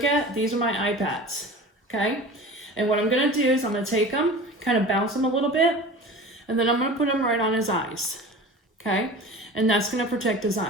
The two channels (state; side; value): normal; both; correlation 0.36